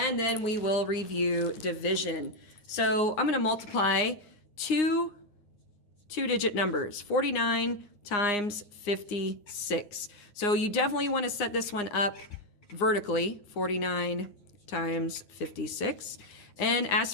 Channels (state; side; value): late; right; 9.7 ms